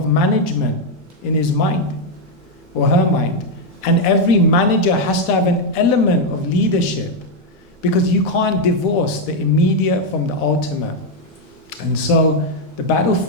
management in his mind, or her mind. And every manager has to have an element of leadership, because you can't divorce the immediate from the ultimate. And so the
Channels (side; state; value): both; normal; correlation 0.02